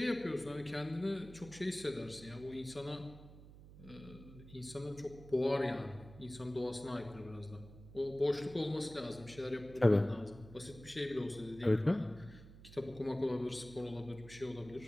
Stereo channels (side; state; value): right; noise; hum, 17 dB below the sound